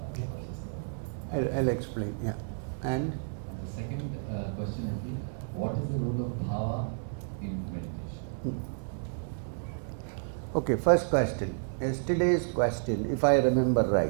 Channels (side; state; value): left; silent; digital silence